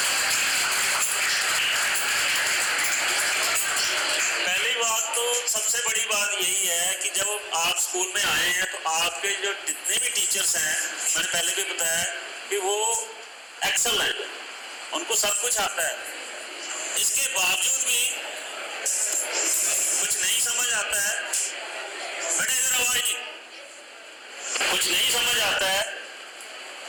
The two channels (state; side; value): identical; both; correlation 1.00